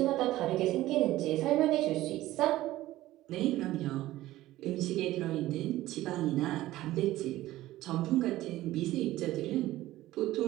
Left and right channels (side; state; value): left; quieter; 15.9 dB